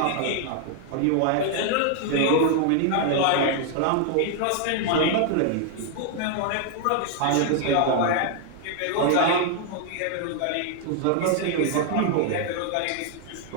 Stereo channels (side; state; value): both; different; correlation 0.00